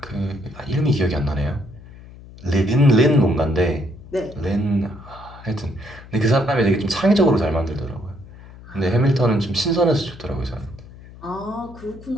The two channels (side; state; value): left; noise; hum, 19 dB below the sound